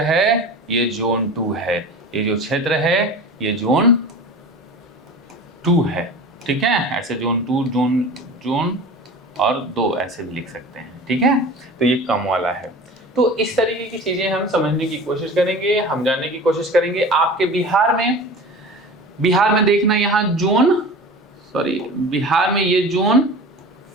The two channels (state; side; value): normal; both; correlation 0.36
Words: ये जोन 2 है, ये जो क्षेत्र है ये जोन 2 है। ठीक है, ऐसे जोन 2, जोन और 2 ऐसे भी लिख सकते हैं। ठीक है, तो ये कम वाला है। तो इस तरीके की चीजें हम समझने की कोशिश करेंगे, हम जानने की कोशिश करेंगे। आपके बिहार में देखना, यहाँ बिहार में ये जोन